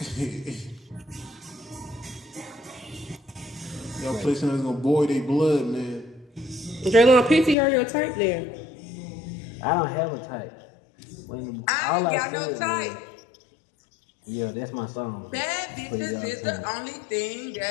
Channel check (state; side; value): drops out; right; at 7.6 s